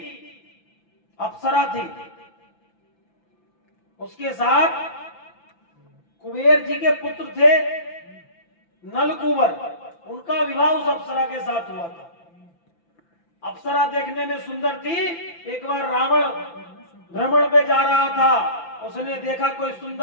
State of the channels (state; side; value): late; right; 5.9 ms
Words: अप्सरा थी, उसके साथ कुबेर जी के पुत्र थे नलकुबर, उनका विवाह उस अप्सरा के साथ हुआ था। अप्सरा देखने में सुंदर थी। एक बार रावण भ्रमण पे जा रहा था, उसने देखा कोई